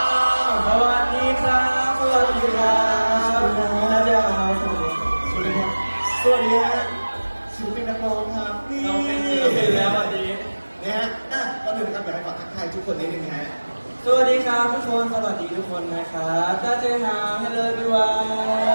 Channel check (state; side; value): inverted; both; correlation -1.00